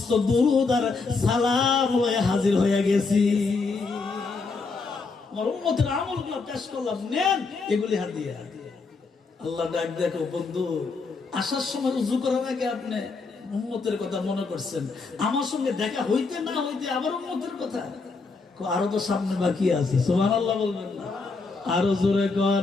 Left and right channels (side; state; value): right; quieter; 4.2 dB